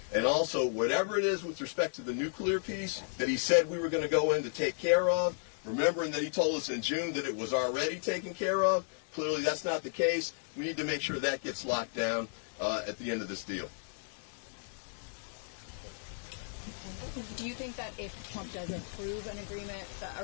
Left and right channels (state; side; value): silent; right; digital silence